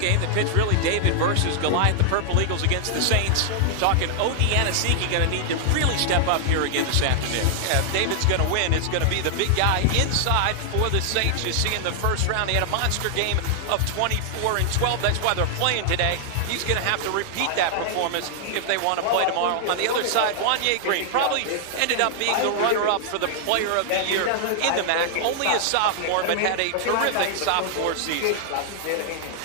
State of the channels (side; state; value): both; different; correlation 0.00